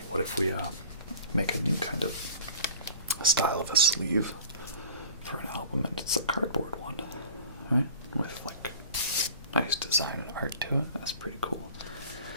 what if we make a new kind of style of a sleeve for an album, and it's a cardboard one, right? With like nice design and art to it. That's pretty cool.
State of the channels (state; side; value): inverted; both; correlation -0.45